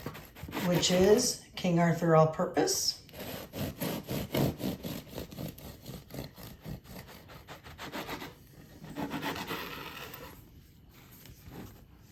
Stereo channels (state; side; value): identical; both; correlation 1.00